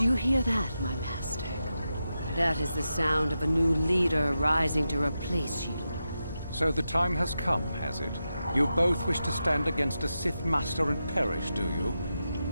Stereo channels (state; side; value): inverted; both; correlation -0.89